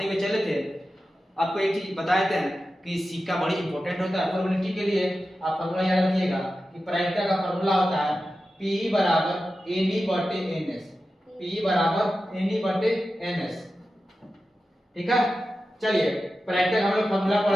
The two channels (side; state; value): both; normal; correlation 0.93